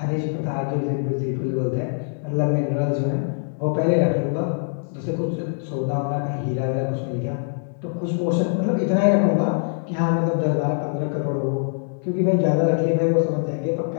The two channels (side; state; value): right; silent; digital silence